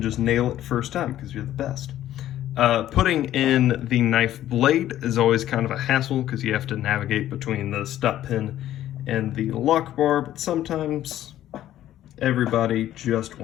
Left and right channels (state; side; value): quieter; right; 12.7 dB